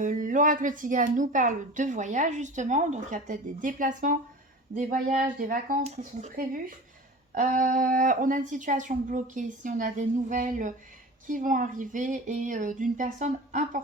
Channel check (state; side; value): normal; both; correlation 0.36